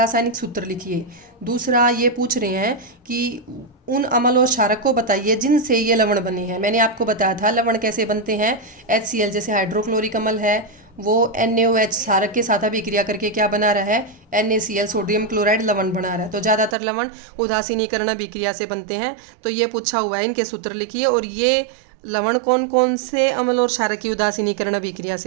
सूत्र लिखिए। दूसरा ये पूछ रहे हैं कि उन अम्ल और क्षारक को बताइए जिनसे ये लवण बने हैं। मैंने आपको बताया था लवण कैसे बनते हैं। HCl जैसे हाइड्रोक्लोरिक अम्ल है, वो NaOH क्षारक के साथ अभिक्रिया करके क्या बना रहा है? NaCl सोडियम क्लोराइड लवण बना रहा है। तो ज़्यादातर लवण उदासीनीकरण अभिक्रिया से बनते हैं। तो ये पूछा हुआ है, इनके सूत्र लिखिए। और ये लवण कौन कौन से अम्ल और क्षारक की उदासीनीकरण अभिक्रिया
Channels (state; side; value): drops out; left; at 16.8 s